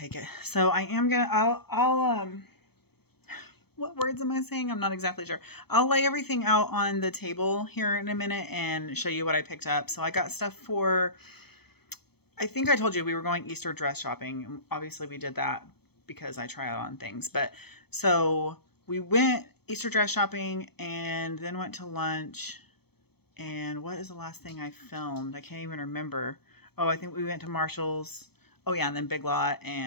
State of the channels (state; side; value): late; right; 0.97 ms